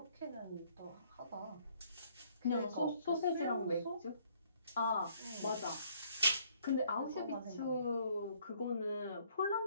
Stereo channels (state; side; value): inverted; both; correlation -0.64